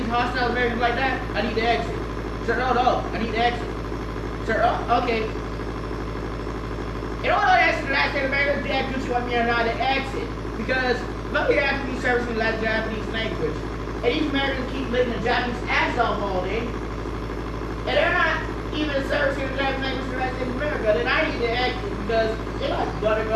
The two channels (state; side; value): identical; both; correlation 1.00